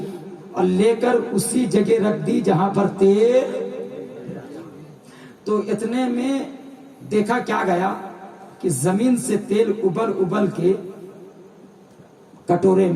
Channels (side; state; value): both; identical; correlation 1.00